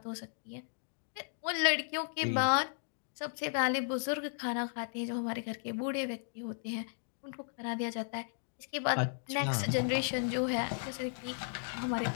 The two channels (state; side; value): silent; right; digital silence